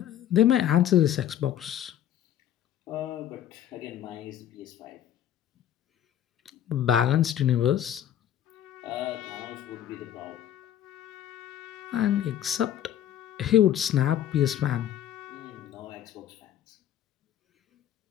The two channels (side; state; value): right; quieter; 10.9 dB